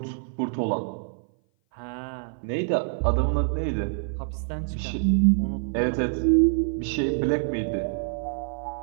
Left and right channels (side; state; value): left; silent; 57 dB below the other